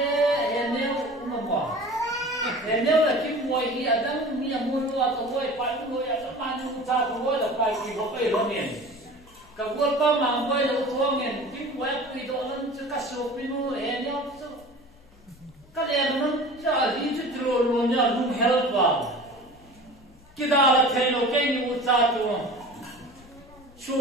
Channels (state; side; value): noise; left; hum, 28 dB below the sound